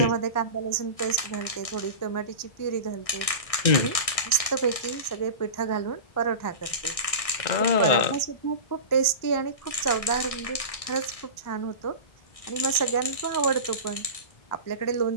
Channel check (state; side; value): late; right; 1.6 ms